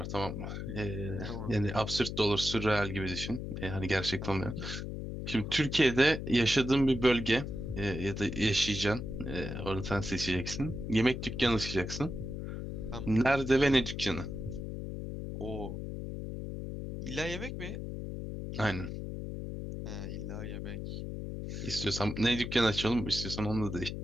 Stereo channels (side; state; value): left; noise; hum, 6 dB below the sound